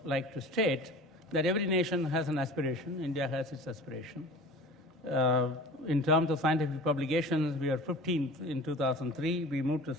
like to state that every nation has an aspiration. India has its aspiration. In terms of scientific publications, we are 15th in 2003. We moved to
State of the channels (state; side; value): normal; both; correlation 0.40